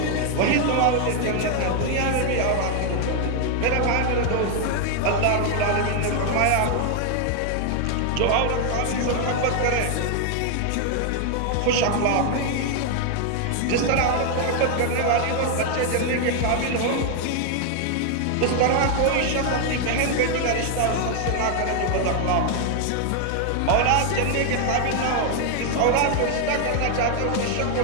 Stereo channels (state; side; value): different; both; correlation 0.00